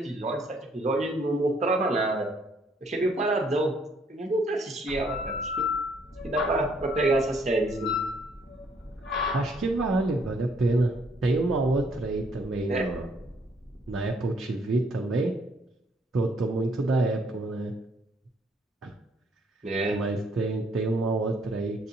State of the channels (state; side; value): normal; both; correlation 0.66